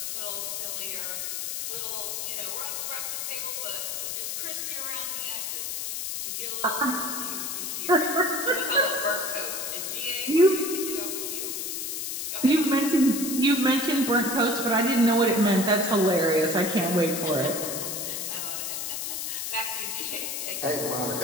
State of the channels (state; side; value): noise; left; hiss, 3 dB below the sound